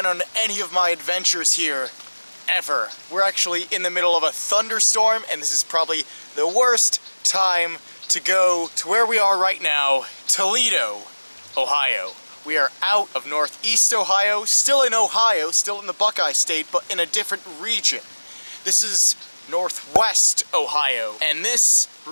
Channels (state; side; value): inverted; both; correlation -1.00